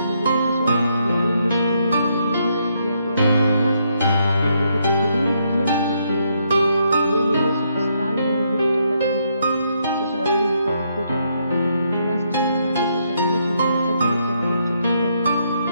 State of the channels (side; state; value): both; inverted; correlation -0.75